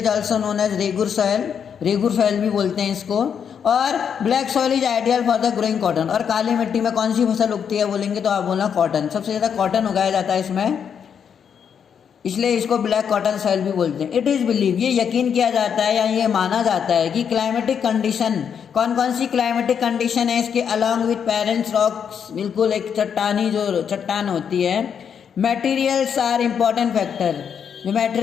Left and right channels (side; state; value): right; quieter; 7.6 dB